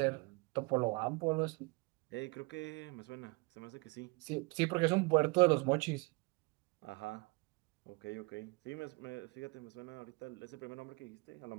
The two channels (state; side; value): quieter; left; 27.4 dB